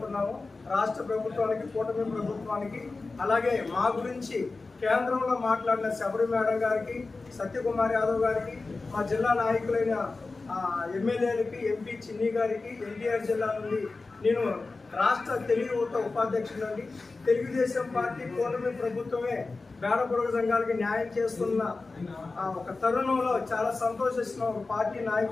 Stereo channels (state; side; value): quieter; right; 3.7 dB